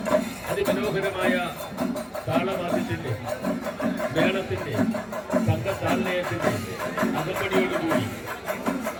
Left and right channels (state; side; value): identical; both; correlation 1.00